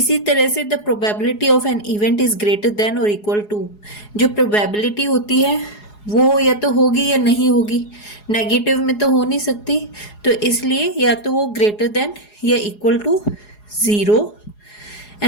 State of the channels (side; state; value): right; late; 4.8 ms